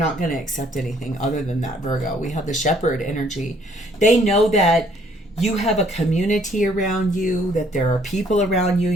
going to accept anything other than that, Virgo. We have the Shepherd energy. They know that you have a community around you, that there are people around you,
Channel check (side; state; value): both; normal; correlation 0.63